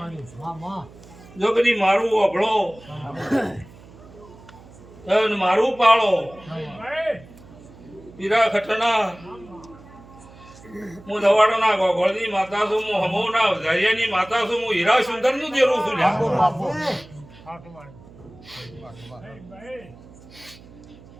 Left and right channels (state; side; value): noise; right; hum, 21 dB below the sound